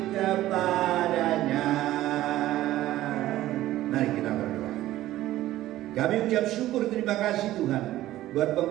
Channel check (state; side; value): quieter; left; 14.8 dB